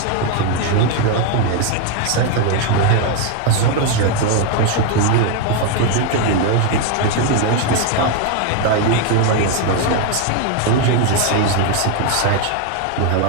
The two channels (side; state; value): both; different; correlation 0.01